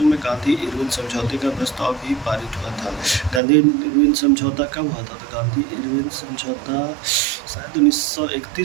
में गांधी इरविन समझौते का प्रस्ताव भी पारित हुआ था। गांधी इरविन समझौता कब हुआ था? तो गांधी इरविन समझौता शायद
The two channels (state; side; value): drops out; left; at 3.4 s